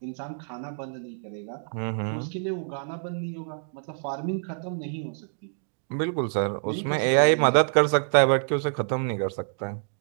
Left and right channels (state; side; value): silent; left; digital silence